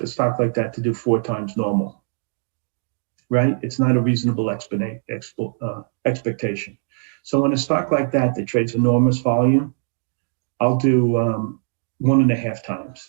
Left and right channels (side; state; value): left; silent; digital silence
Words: stock like that to do 4 times normal, right? It's not a reasonable expectation. So in a stock like that trades enormous volume, I'll do 1.5